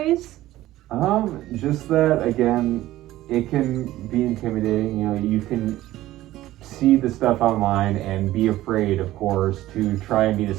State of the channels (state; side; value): quieter; left; 15.5 dB